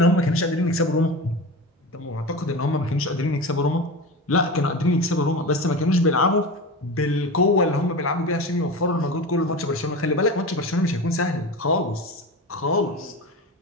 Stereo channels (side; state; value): both; normal; correlation 0.27